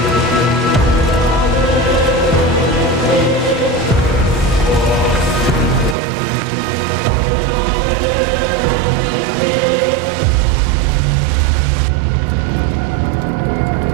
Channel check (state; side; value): drops out; left; at 6.0 s